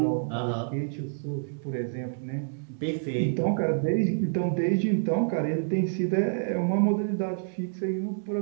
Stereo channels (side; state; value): left; silent; digital silence